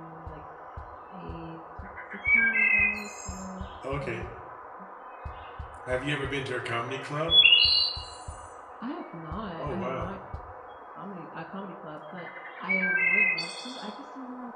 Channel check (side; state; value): both; identical; correlation 1.00